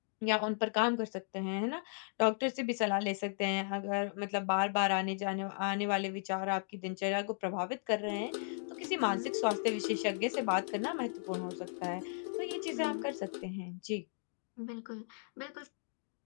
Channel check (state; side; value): silent; right; digital silence